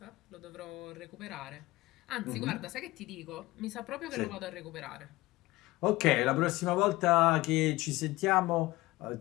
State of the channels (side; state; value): right; quieter; 19.2 dB